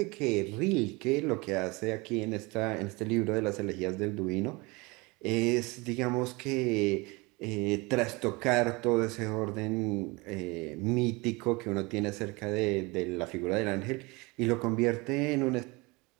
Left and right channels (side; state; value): left; quieter; 25.4 dB